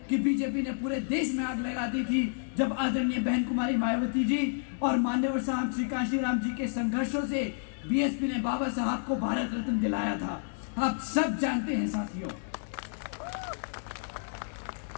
कि बीजेपी ने पूरे देश में आग लगा दी थी जब आदरणीय बहन कुमारी मायावती जी और मान्यवर साहब श्री कांशीराम जी के संघर्षों से बीएसपी ने बाबा साहब को भारत रत्न दिलाया था। आप सब जानते हैं साथियों।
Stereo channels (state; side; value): silent; right; digital silence